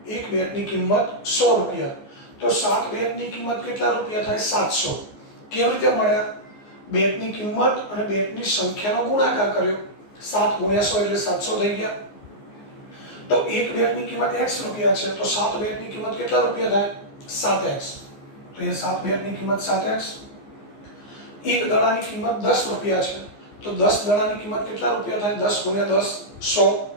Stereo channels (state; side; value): late; right; 14 ms